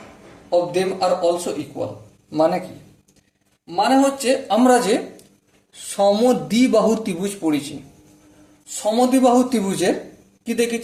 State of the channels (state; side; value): identical; both; correlation 1.00